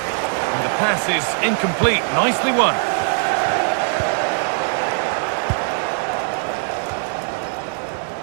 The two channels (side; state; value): left; silent; 65 dB below the other